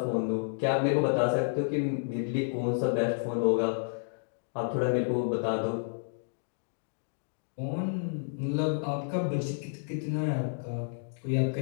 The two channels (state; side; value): silent; right; digital silence